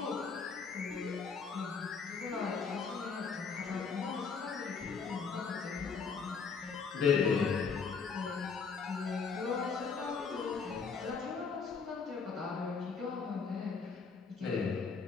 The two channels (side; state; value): right; quieter; 5.4 dB